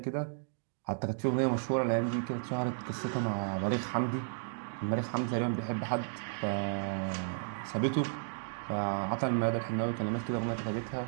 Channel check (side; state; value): left; silent; digital silence